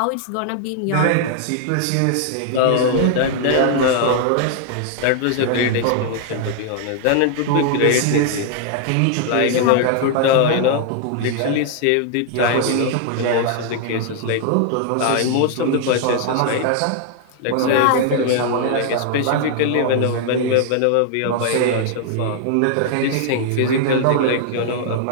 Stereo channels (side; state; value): both; different; correlation -0.01